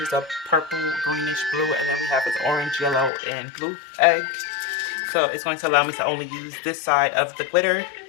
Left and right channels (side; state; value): right; drops out; at 3.1 s